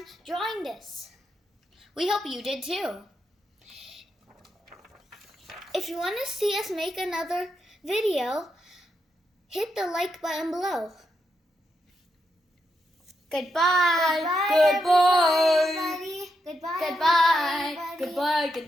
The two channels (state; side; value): normal; both; correlation 0.83